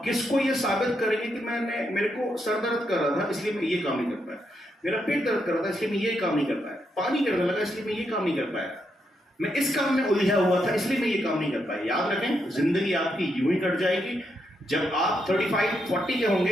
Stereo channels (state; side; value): normal; both; correlation 0.80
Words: किसको ये साबित करेंगे कि मेरे को सर दर्द कर रहा था इसलिए मैं ये काम नहीं कर पाया, मेरा पेट दर्द कर रहा था इसलिए मैं ये काम नहीं कर पाया, पानी गिरने लगा इसलिए मैं ये काम नहीं कर पाया, मैं इस काम में उलझा हुआ था इसलिए मैं ये काम नहीं कर पाया। याद रखें, जिंदगी आपकी यूं ही कट जाएगी। जब आप 35-40 के